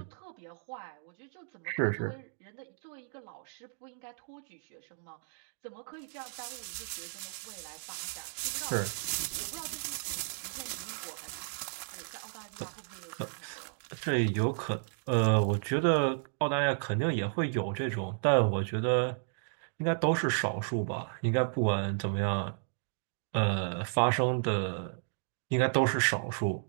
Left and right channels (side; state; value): left; silent; digital silence